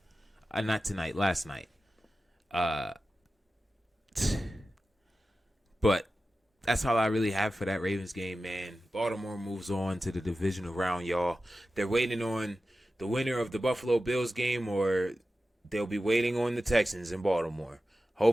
Not tonight, last night. But that's all I really have for that Ravens game, man. Baltimore moves on to the divisional round, y'all. They're waiting on the winner of the Buffalo Bills game, or they'll be waiting on the Texans in Baltimore.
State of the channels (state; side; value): normal; both; correlation 0.94